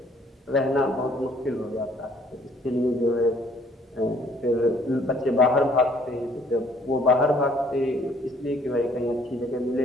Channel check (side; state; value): both; normal; correlation 0.60